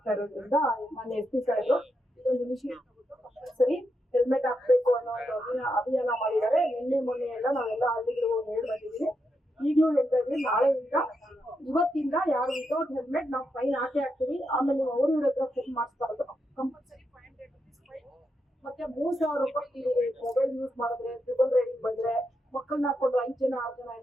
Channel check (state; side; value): normal; both; correlation 0.83